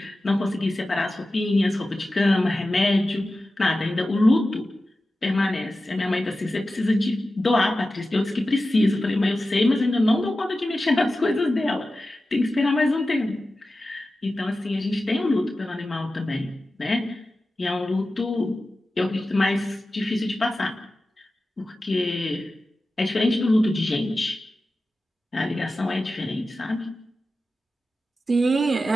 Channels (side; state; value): both; normal; correlation 0.94